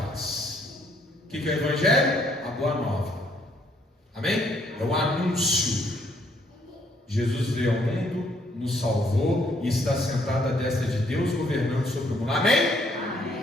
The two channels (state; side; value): normal; both; correlation 0.67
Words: O que é o evangelho? A boa nova, amém? É o anúncio. Jesus veio ao mundo, nos salvou e está sentado à destra de Deus, governando sobre o mundo. Amém?